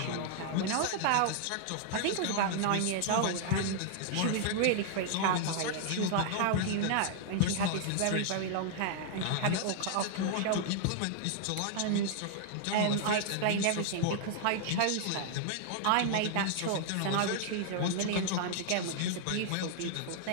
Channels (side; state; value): both; different; correlation 0.00